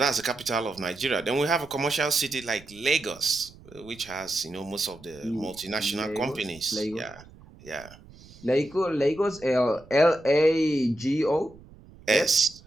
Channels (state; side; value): noise; right; rumble, 22 dB below the sound